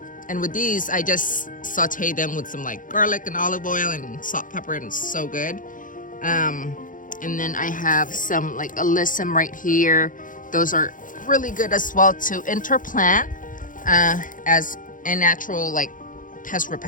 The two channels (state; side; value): late; right; 0.39 ms